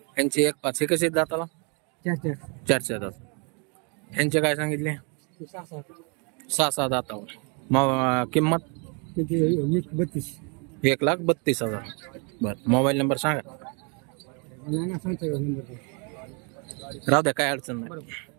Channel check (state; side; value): quieter; left; 35.2 dB